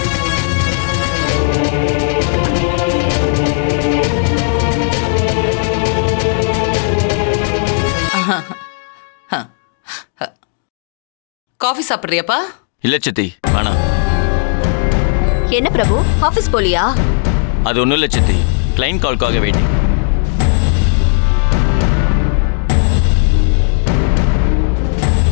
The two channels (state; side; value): silent; right; 67 dB below the other